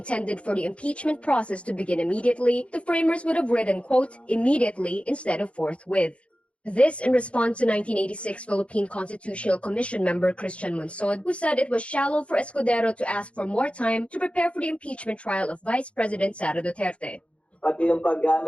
for the impeachment process to begin immediately, the framers would have written, quote, immediately instead of forthwith. This in response to 1986 Philippine Constitutional Commission member Christian Monsod, who said it was shallow for Escudero to ask for more time to prepare for the impeachment trial of Vice President Sara Duterte. Pati yung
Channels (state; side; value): late; right; 0.061 ms